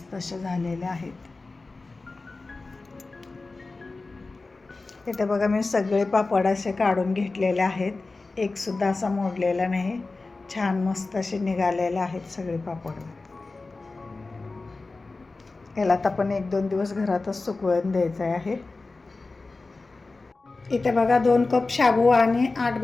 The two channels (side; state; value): right; quieter; 3.6 dB